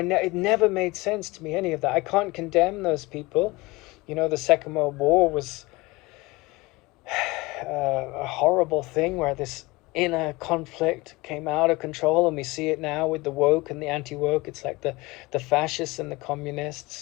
never made sense to me, any of that. I can't condemn those people. The Second World War was a horrible thing where this inner conflict came out of control, and we see it now with the woke and the anti-woke. It's like the fascists and the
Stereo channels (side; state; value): right; quieter; 22.6 dB